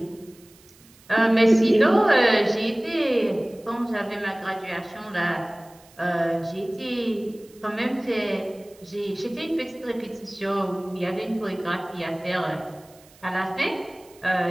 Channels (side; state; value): right; noise; hiss, 27 dB below the sound